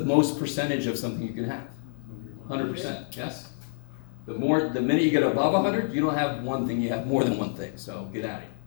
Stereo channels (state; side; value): silent; right; digital silence